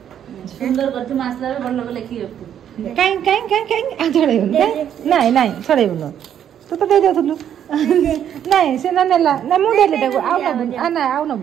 सुंदर करती मसला बड़ लोग लिखी काई काई काई काई आ छड़े नहीं नहीं छड़े बोलो तू तो दे दे थलु नहीं से ना नेला ना मु दे ले देखो आओ ना बुन आ ना आओ ना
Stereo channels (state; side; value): quieter; left; 9.6 dB